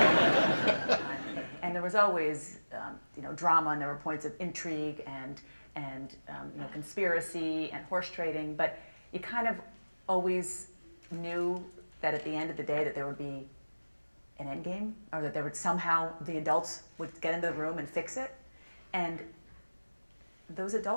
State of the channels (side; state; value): both; inverted; correlation -1.00